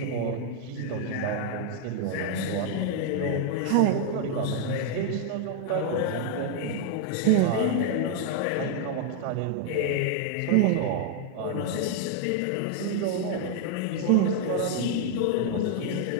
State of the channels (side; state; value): both; different; correlation 0.00